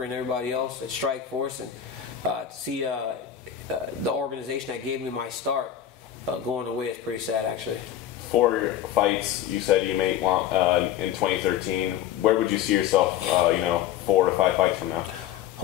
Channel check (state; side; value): quieter; right; 10.5 dB